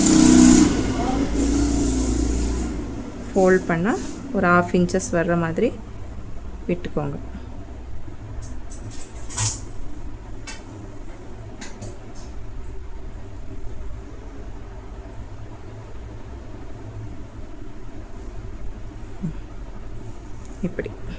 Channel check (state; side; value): identical; both; correlation 1.00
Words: ஃபோல்ட் பண்ணால் ஒரு 1/2 இன்ச்சஸ் வர்ற மாதிரி விட்டுக்கோங்க. இப்படி